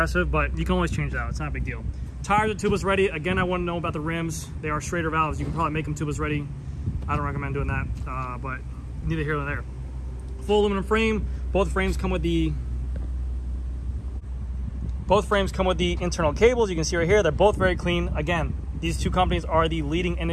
but you can always change that out. It's not a big deal. Tires are tubeless ready. Again, I want to know about the rims. They are Schrader valves. You can probably make them tubeless ready. I don't recommend doing that, but neither here nor there. Full aluminum frame. Both frames come with the internal cables. You can see right here, they're both very clean. Again, these two companies are the leading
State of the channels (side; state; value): both; identical; correlation 1.00